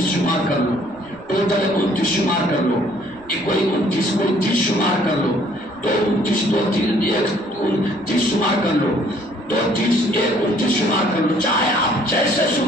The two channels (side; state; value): right; noise; rumble, 29 dB below the sound